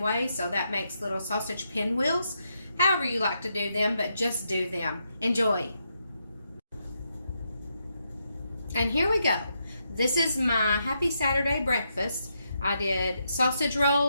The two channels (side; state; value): both; inverted; correlation -0.81